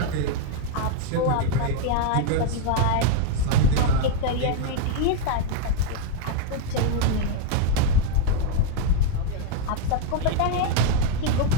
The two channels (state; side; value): different; both; correlation 0.00